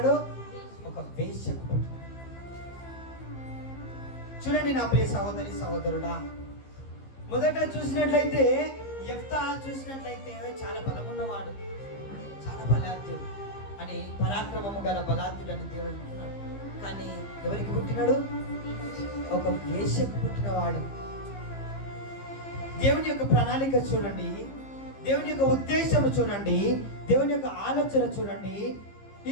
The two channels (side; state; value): right; late; 15 ms